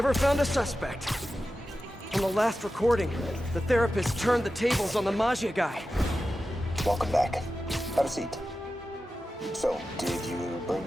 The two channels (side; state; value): both; normal; correlation 0.93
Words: found a suspect. On the last recording, the therapist turned the tables on the Maggia guy. Welcome back. Have a seat. So, did you